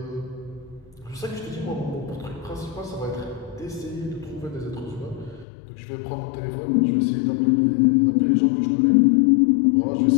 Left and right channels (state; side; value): drops out; right; at 5.5 s